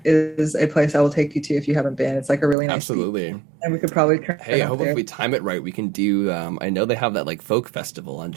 is a place I will take you to if you haven't been. It's like a really nice beach. Absolutely. And we could probably turn Hey, I up hope there. if we time it right, we can do, I know they have that like folk festival on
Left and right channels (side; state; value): left; drops out; at 2.6 s